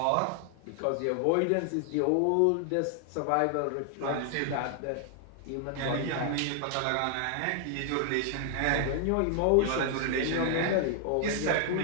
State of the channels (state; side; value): different; both; correlation 0.00